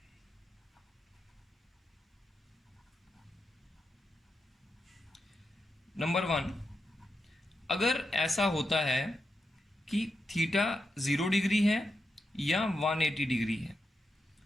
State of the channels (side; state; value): both; normal; correlation 0.87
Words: नंबर 1, अगर ऐसा होता है कि थीटा 0 डिग्री है या 180 डिग्री है,